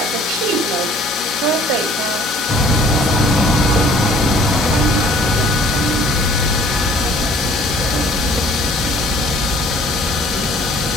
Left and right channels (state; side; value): normal; both; correlation 0.55